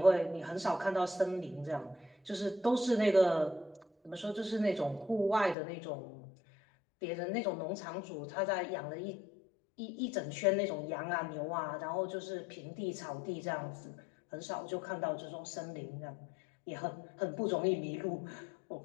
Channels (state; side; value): drops out; right; at 5.6 s